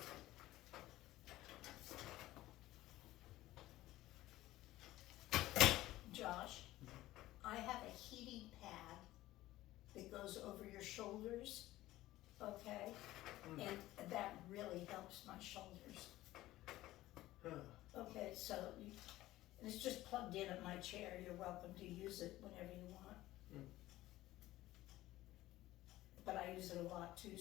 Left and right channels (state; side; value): quieter; right; 16.2 dB